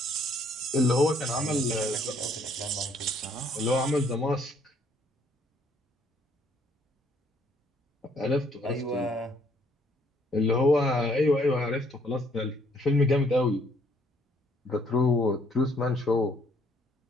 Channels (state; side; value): normal; both; correlation 0.66